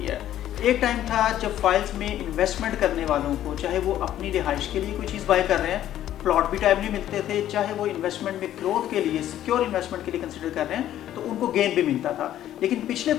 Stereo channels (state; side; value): quieter; right; 12.1 dB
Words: है। एक टाइम था जब फाइल्स में इन्वेस्टमेंट करने वालों को, चाहे वो अपनी रिहाइश के लिए कोई चीज़ बाय कर रहे हैं, प्लॉट भी टाइमली मिलते थे, चाहे वो इन्वेस्टमेंट में ग्रोथ के लिए, सिक्योर इन्वेस्टमेंट के लिए कंसिडर कर रहे हैं, तो उनको गेन भी मिलता था। लेकिन पिछले